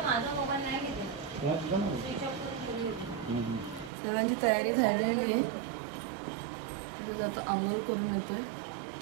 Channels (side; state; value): left; drops out; at 3.9 s